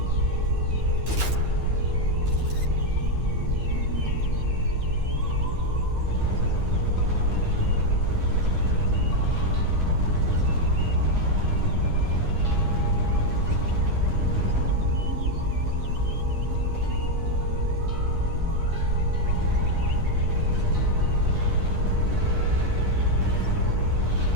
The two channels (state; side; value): late; left; 9.8 ms